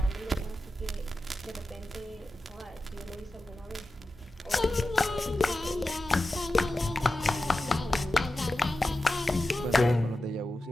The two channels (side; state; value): both; normal; correlation 0.93